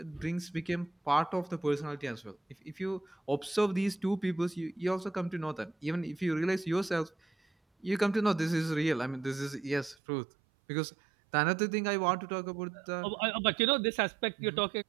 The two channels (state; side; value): drops out; left; at 10.0 s